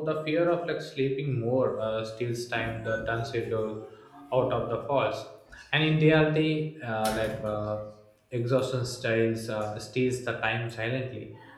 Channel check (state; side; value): identical; both; correlation 1.00